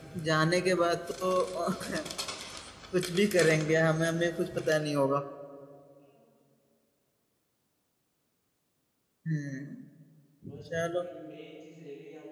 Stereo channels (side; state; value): both; identical; correlation 1.00